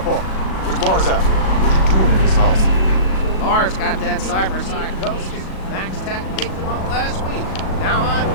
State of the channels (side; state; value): right; late; 37 ms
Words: where's Lars at? What you doing in this house? Lars got that cyber psychosis. Max Tech picked him up last week. Now I'm...